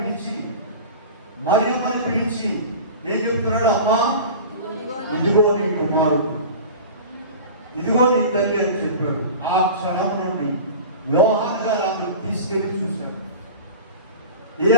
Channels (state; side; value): inverted; both; correlation -0.35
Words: మరియమ్మని పిలిచి ఏం చెప్తున్నాడు? అమ్మా ఇదిగో నీ కుమారుడు, ఇదిగో నీ తల్లి అని చెప్పాడు. ఆ క్షణం నుండి యోహాను గారు ఆమెను తీసుకెళ్లి చూశాడు. ఏ